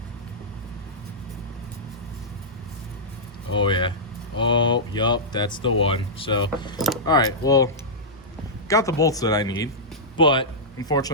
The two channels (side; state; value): both; normal; correlation -0.12